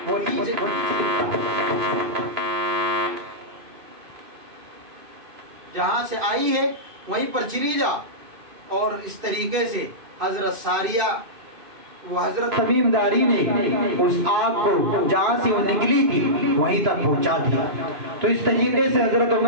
جہاں سے آئی ہے وہیں پر چلی جا۔ اور اس طریقے سے حضرت ساریہ وہ حضرت تمیم داری نے اس آگ کو جہاں سے وہ نکلی تھی وہیں تک پہنچا دیا۔ تو اس طریقے سے حضرت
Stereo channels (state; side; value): late; left; 2.5 ms